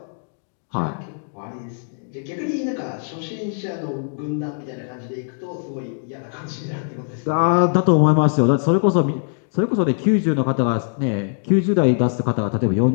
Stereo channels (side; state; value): right; silent; 64 dB below the other